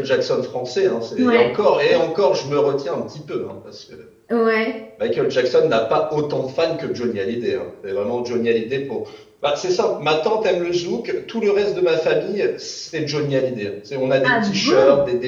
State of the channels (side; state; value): both; identical; correlation 1.00